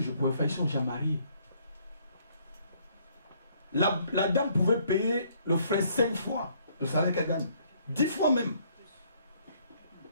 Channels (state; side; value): inverted; both; correlation -0.65